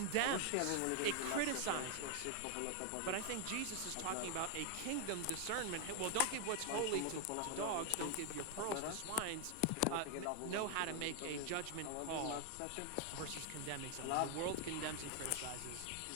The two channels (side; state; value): both; different; correlation 0.01